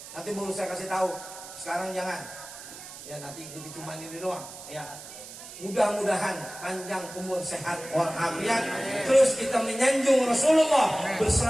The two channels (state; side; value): noise; right; hiss, 14 dB below the sound